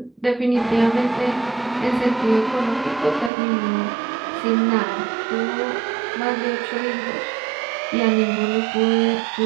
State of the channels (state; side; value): drops out; left; at 3.3 s